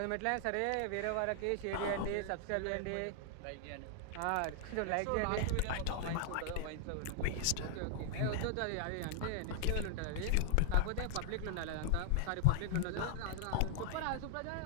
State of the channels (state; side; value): different; both; correlation 0.00